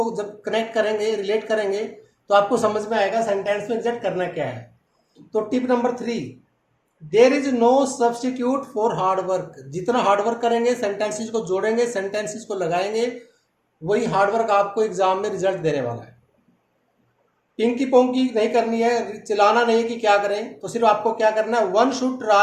जब कनेक्ट करेंगे, रिलेट करेंगे, तो आपको समझ में आएगा सेंटेंस में एग्जैक्ट करना क्या है। तो tip number 3, there is no substitute for hard work. जितना हार्ड वर्क करेंगे, सेंटेंसेस को जोड़ेंगे, सेंटेंसेस को लगाएंगे, वही हार्ड वर्क आपको एग्जाम में रिजल्ट देने वाला है। पिंकी पोंकी नहीं करनी है, चिल्लाना नहीं है कि क्या करें, तो सिर्फ आपको क्या करना है, one should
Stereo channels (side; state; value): both; identical; correlation 1.00